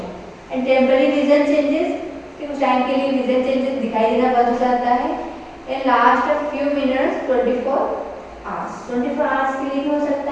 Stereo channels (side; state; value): both; identical; correlation 1.00